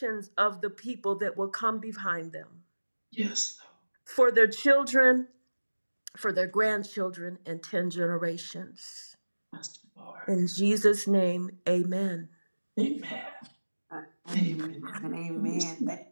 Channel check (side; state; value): both; inverted; correlation -1.00